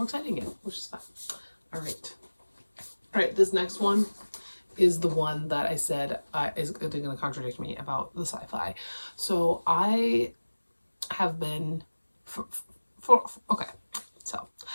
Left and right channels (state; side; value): inverted; both; correlation -1.00